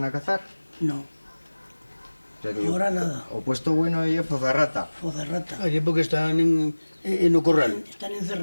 a cazar. No, O sea que ahora nada. o puesto bueno y Fozarrata. Fozarrata. Allí porque están en o corral. Están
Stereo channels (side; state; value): both; inverted; correlation -1.00